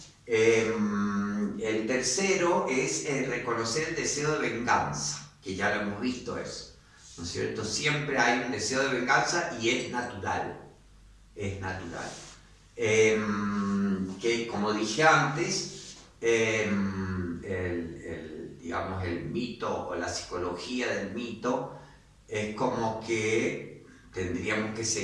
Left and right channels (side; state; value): both; identical; correlation 1.00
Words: El tercero es reconocer el deseo de venganza, que ya lo hemos visto eso, ¿no es cierto? Siempre hay un deseo de venganza y es natural, que como dije antes, digamos, el mito o la psicología del mito es como que tendríamos que